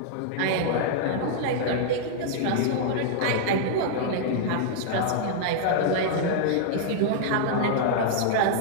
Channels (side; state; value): both; different; correlation -0.01